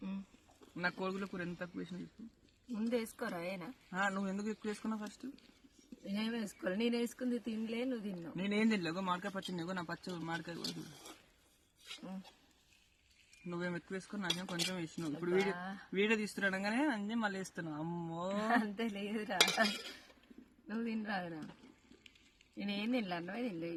నా కోడిగుడ్ల కూర ఎంత తక్కువ వేసిన చెప్పు. ముందు వేసుకోరా ఏనా? నువ్వు ఎందుకు ఎక్కువ వేసుకున్నావు ఫస్ట్? నేనేం వేసుకోవాలి, నేను వేసుకుంది తినలే, నువ్వు తిన్నావు. నేనేం తినలేవు, మామిడికాయ పచ్చింది నా పచ్చ మామిడికాయ కూడా. నువ్వేం ఎక్కువ వేసుకుని నాకేం కొంచెం వేసినావు. ఇప్పుడు వీడియో తీస్తున్నాడగానే అన్నీ మళ్ళీ వేస్తున్నావు. అమ్మో అంతే లేదురా, నువ్వు తినరాదురా. నేనేం తినలే, అన్నమే తినలే.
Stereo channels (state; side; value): identical; both; correlation 1.00